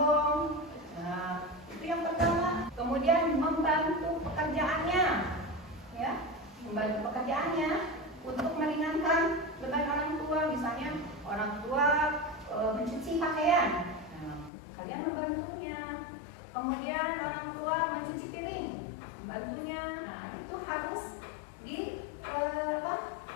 Nah, itu yang pertama. Kemudian membantu pekerjaannya, ya, membantu pekerjaannya untuk meringankan beban orang tua. Misalnya orang tua mencuci pakaian, nah, kalian membantunya. Kemudian orang tua mencuci piring, membantunya. Nah, itu harus di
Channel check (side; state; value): right; drops out; at 14.5 s